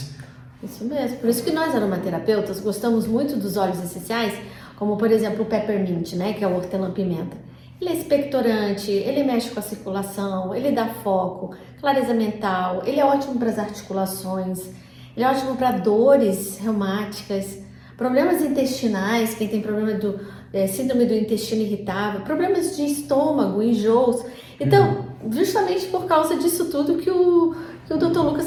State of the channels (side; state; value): both; identical; correlation 1.00